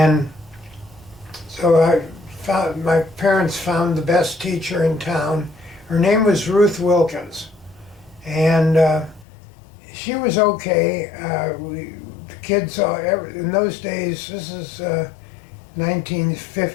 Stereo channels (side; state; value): right; drops out; at 9.2 s